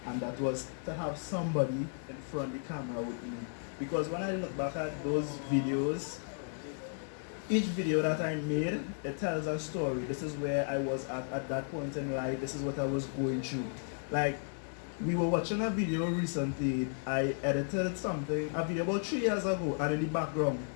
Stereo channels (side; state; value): right; silent; digital silence